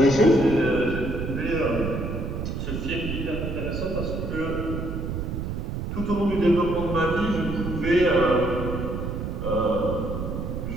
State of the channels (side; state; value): right; noise; rumble, 4 dB below the sound